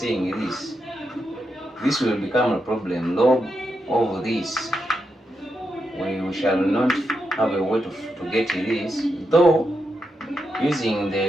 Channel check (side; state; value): both; normal; correlation 0.85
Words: this will become a problem. Log of this, we shall not have a way to get this, though using